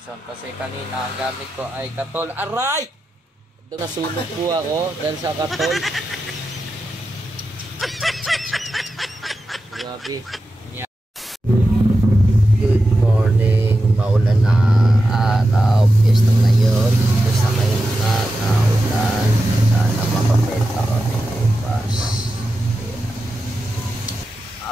kasi kanina ang gamit ko ay katol. Aray! Nasunog po ako dahil sa katol. Grabe. Good morning. Maulan na araw. Piyesta ngayon. Basta ngayon na naulan. Sana makapenta kami bukas.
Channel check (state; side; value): normal; both; correlation 0.91